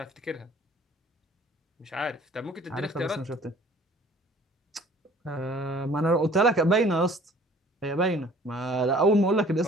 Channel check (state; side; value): normal; both; correlation 0.52